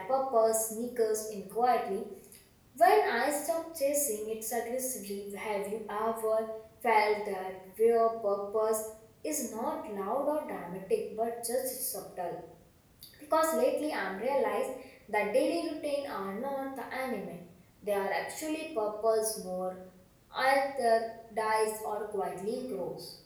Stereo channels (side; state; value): both; identical; correlation 1.00